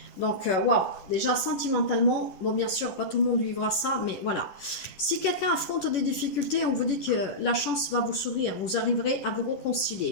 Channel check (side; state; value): right; late; 11 ms